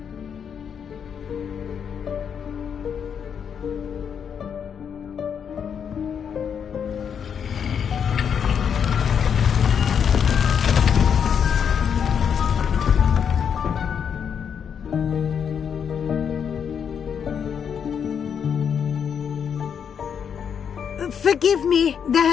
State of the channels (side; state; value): right; quieter; 7.5 dB